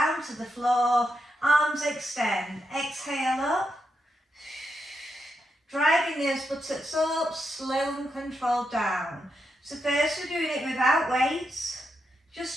to the floor, arms extend, exhale up. Driving those buttocks up, slow and controlled down. So first we're doing it without weights,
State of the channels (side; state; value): both; normal; correlation 0.84